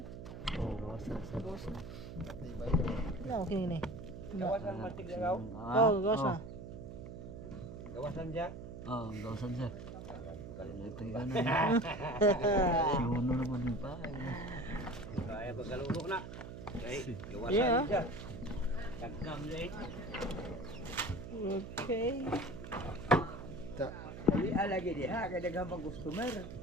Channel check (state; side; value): noise; right; hum, 10 dB below the sound